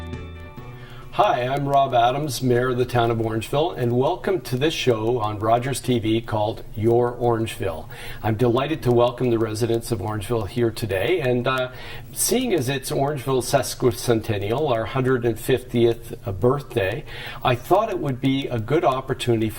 Hi, I'm Rob Adams, Mayor of the Town of Orangeville, and welcome to this show on Rogers TV called Your Orangeville. I'm delighted to welcome the residents of Orangeville here today, and seeing as it's Orangeville's sesquicentennial, our 150th birthday, I thought it would be a good opportunity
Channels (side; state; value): both; identical; correlation 1.00